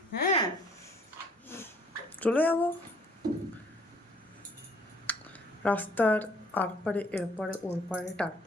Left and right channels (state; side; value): normal; both; correlation 0.59